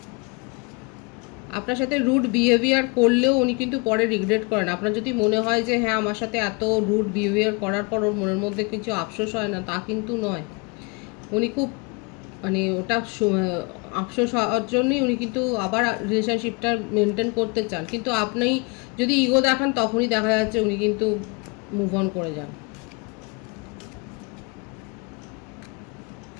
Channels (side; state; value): right; quieter; 29.9 dB